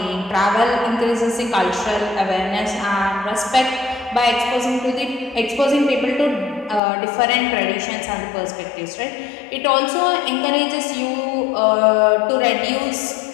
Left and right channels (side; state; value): right; drops out; at 6.8 s